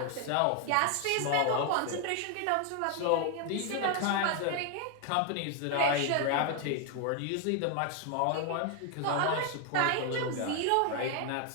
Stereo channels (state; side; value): different; both; correlation 0.00